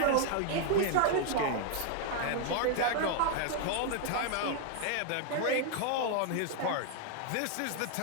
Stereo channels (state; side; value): different; both; correlation 0.00